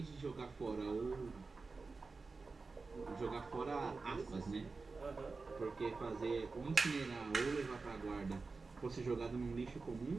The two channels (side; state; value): left; quieter; 4.1 dB